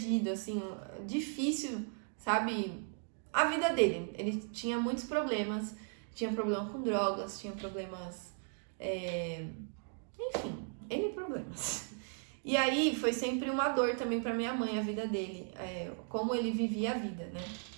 assim, difícil, sabe? A vida dele. Ele tinha muitos problemas, tinha problema com drogas, tinha problemas... enfim, N problemas. E aí foi sempre uma dor também pra minha mãe, a vida dele, como ele vivia a vida, né?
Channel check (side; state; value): left; silent; 53 dB below the other